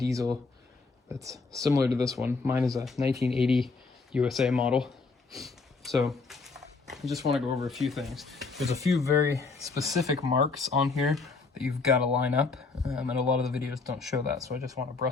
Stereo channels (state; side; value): quieter; right; 4.2 dB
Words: that's similar to this one. Mine is a 1980 USA model. So I just want to go over a few things. There's a few very specific marks on here that you've got to line up, and a lot of the videos don't show that, so I just want to